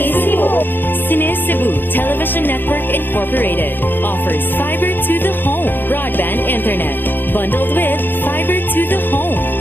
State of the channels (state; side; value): late; right; 0.094 ms